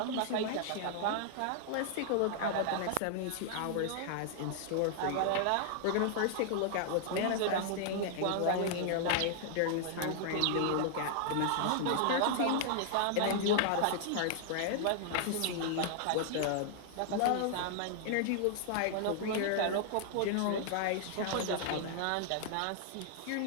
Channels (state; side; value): different; both; correlation 0.00